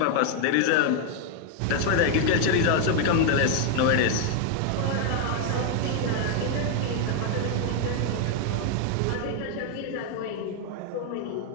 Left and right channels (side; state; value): both; different; correlation 0.00